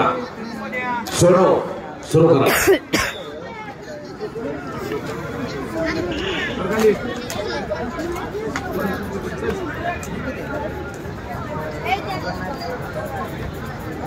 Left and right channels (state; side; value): identical; both; correlation 1.00